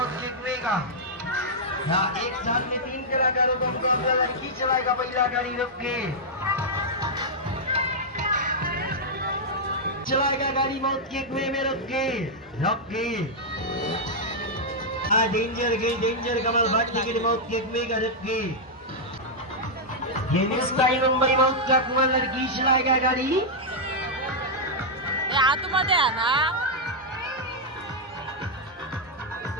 जितवेगा। यहाँ एक साथ में 3 कलाकारों को मुकाबला लड़की चलाएगा। पहला गाड़ी रुक के चलाएगा, गाड़ी मौत के कुएं में रुक के डेंजर कमाल बात टिकट मौत के कुएं का रुक के। ये मिस्टाई मुंबई मौत का कुआं लड़की चलाएगा गाड़ी। आतमध्ये आहे ना,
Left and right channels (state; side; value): normal; both; correlation -0.05